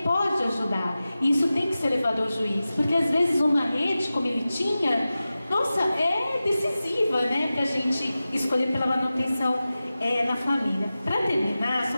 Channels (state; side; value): inverted; both; correlation -0.95